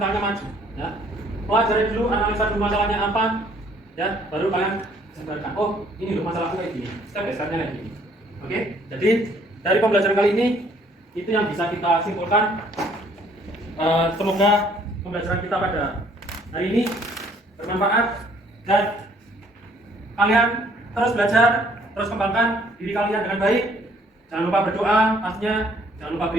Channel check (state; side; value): normal; both; correlation 0.62